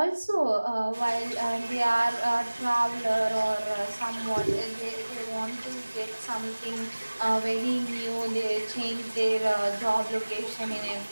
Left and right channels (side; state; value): both; inverted; correlation -1.00